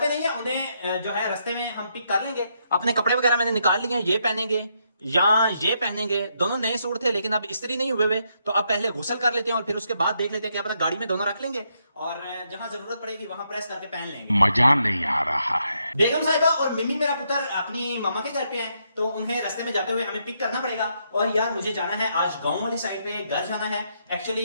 पे नहीं है, उन्हें जो है रास्ते में हम पिक कर लेंगे। अपने कपड़े वगैरह मैंने निकाल लिए हैं, ये पहनेंगे या ये पहनेंगे। दोनों नए सूट थे लेकिन अब इस्त्री नहीं हुए हुए, तो अब पहले गुसल कर लेते हैं और फिर उसके बाद देख लेते हैं कि अपना गाड़ी में दोनों रख लेंगे, और जहां जरूरत पड़ेगी वहां प्रेस करके पहन लेंगे। मजा नहीं आ रहा है। बेगम साहिबा और मिमी मेरा पुत्र अपनी मामा के घर पे हैं, तो उन्हें रास्ते में जाते हुए हमें पिक करना पड़ेगा। और यार मुझे जाना है आज गांव वाली साइड पे, घर जाना है।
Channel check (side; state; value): both; inverted; correlation -0.77